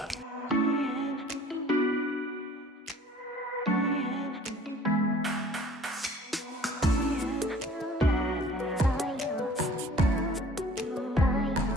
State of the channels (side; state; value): both; normal; correlation 0.51